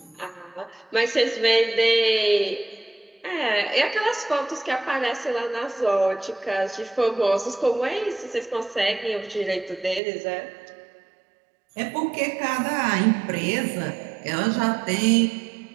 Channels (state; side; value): drops out; left; at 10.0 s